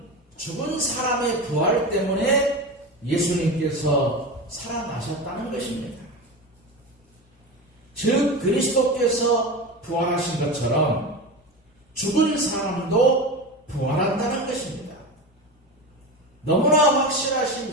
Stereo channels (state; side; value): normal; both; correlation 0.24